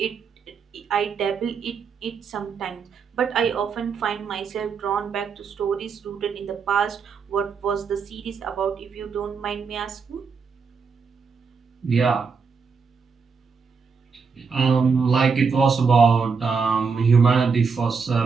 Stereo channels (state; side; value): quieter; left; 5.4 dB